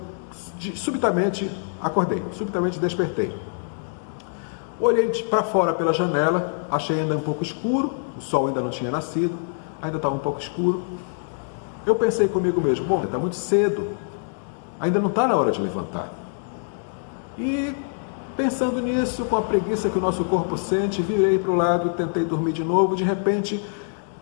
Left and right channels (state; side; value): silent; right; digital silence